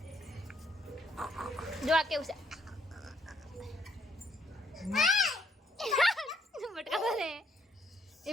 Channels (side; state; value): both; normal; correlation 0.70